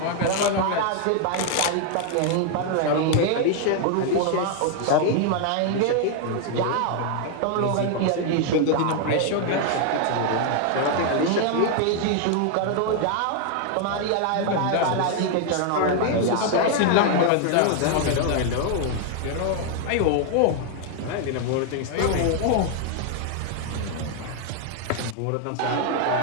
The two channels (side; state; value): both; different; correlation 0.00